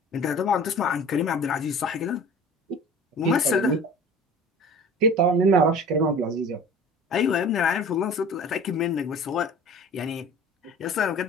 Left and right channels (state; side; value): normal; both; correlation 0.41